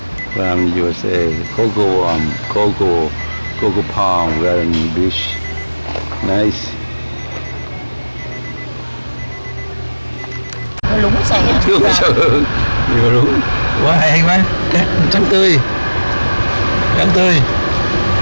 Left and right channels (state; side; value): inverted; both; correlation -1.00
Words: From USA, Coco Palm Garden Beach, nice. Lúng xẻ. Nhiều lúng, quá hay quá, cát trắng tươi,